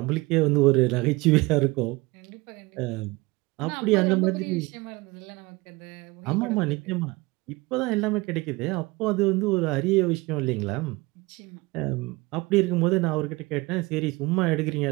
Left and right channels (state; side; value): quieter; left; 23.1 dB